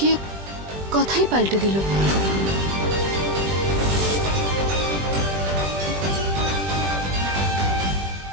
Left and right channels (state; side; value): late; left; 20 ms